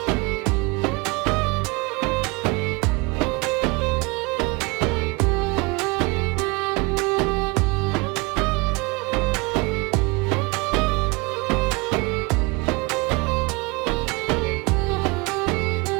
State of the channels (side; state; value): left; quieter; 26.1 dB